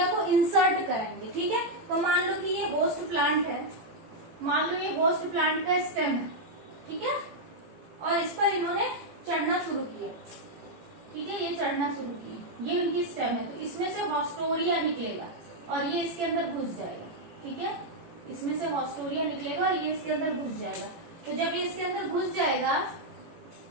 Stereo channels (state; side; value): late; left; 18 ms